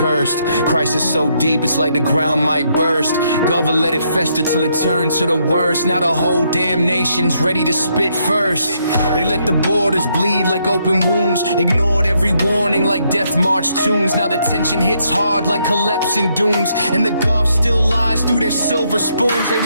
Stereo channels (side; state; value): both; inverted; correlation -0.75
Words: Crisis so deep it's like the ground might burst. Government let it fester till it turns to the worst. Now the whole damn nation's ready to spit first. They let the borders bleed like open wounds. Ignored every warning like death march tunes. Now the tension hits hard like collapsing dunes. And the Gulf still lies through their silver spoons. They